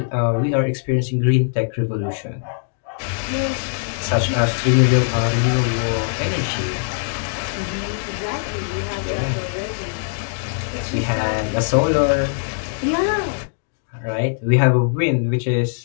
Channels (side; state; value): right; silent; digital silence